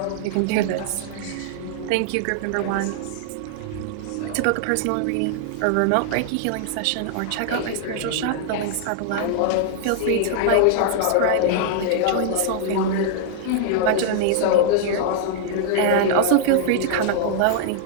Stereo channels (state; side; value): different; both; correlation -0.01